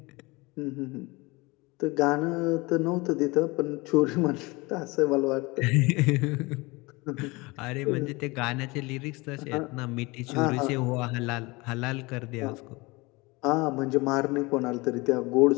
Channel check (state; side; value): quieter; right; 24.2 dB